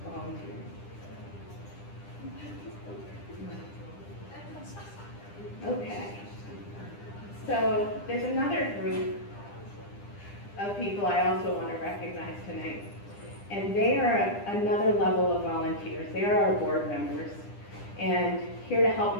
volunteers. Okay. So there's another group of people I also want to recognize tonight. And they are another level of volunteers. They are our board members. And here to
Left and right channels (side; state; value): right; late; 10 ms